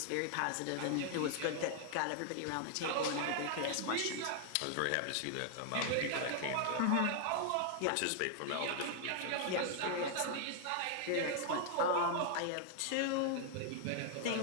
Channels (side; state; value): both; different; correlation 0.00